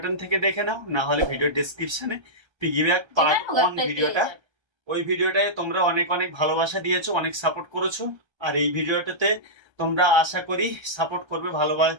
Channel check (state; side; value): late; left; 1.3 ms